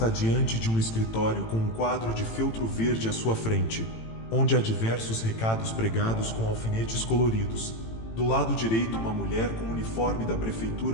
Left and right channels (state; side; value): late; right; 18 ms